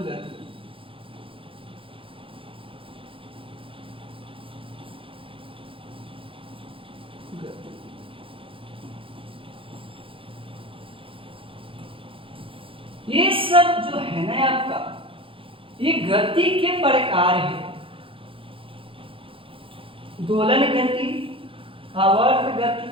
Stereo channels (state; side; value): late; left; 0.26 ms